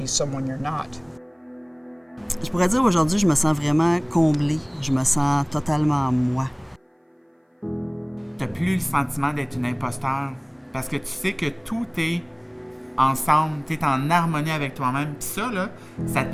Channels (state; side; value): identical; both; correlation 1.00